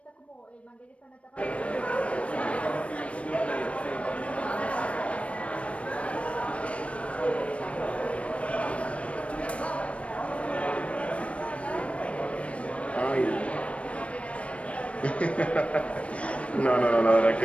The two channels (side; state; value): right; late; 0.063 ms